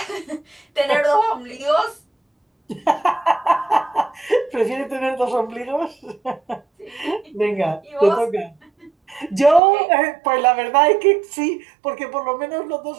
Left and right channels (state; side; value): drops out; left; at 9.6 s